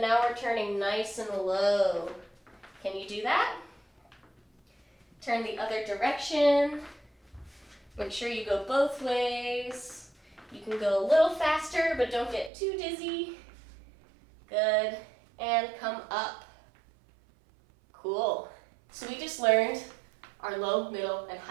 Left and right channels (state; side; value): drops out; left; at 12.5 s